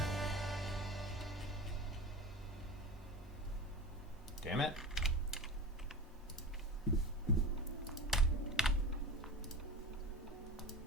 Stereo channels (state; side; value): normal; both; correlation 0.30